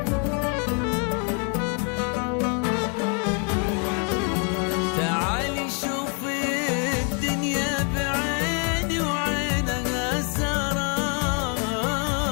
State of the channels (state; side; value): quieter; right; 38.0 dB